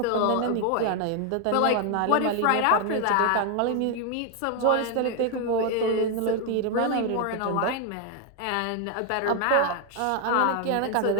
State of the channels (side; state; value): both; different; correlation 0.01